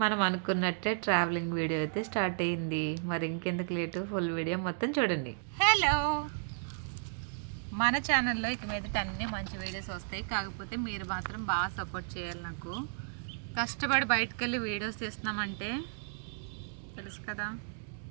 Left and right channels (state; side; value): silent; left; digital silence